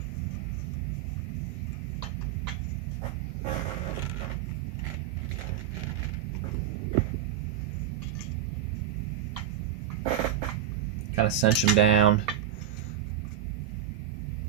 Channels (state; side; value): quieter; left; 10.3 dB